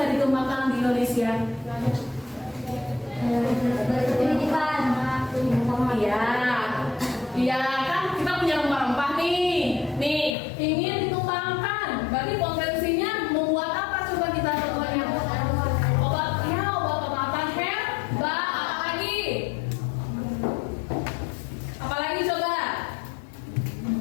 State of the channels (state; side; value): drops out; right; at 10.4 s